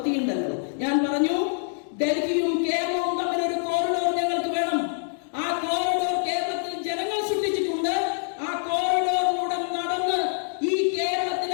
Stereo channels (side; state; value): right; silent; digital silence